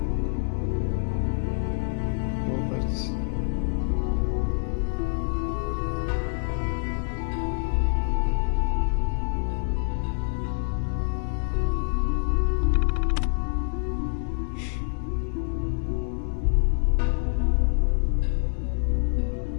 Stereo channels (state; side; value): silent; right; 61 dB below the other